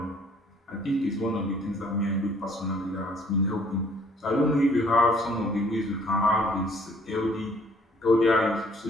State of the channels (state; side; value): normal; both; correlation 0.59